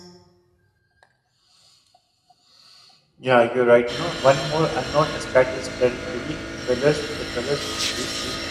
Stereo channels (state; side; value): identical; both; correlation 1.00